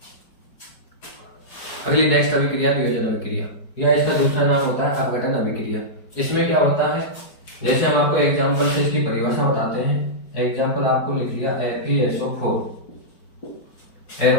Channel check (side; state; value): right; late; 4.9 ms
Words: अगली नेक्स्ट अभिक्रिया वियोजन अभिक्रिया, या इसका दूसरा नाम होता है अपघटन अभिक्रिया। इसमें क्या होता है, जैसे हम आपको एग्जांपल से इसकी परिभाषा बताते हैं। एग्जांपल आपको लिख लिया FeSO4,